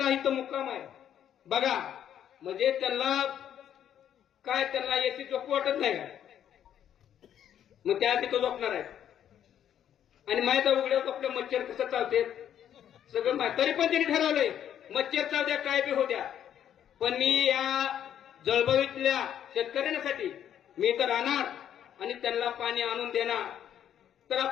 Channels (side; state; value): right; quieter; 10.0 dB